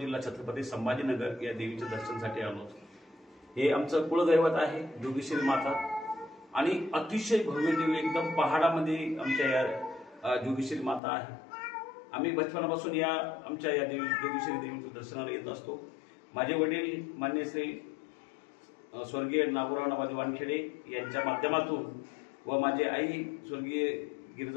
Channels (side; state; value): right; drops out; at 11.0 s